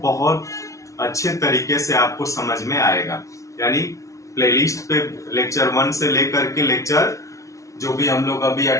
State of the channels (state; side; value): late; right; 0.15 ms